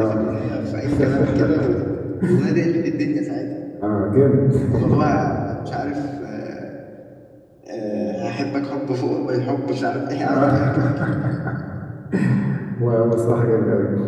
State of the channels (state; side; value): identical; both; correlation 1.00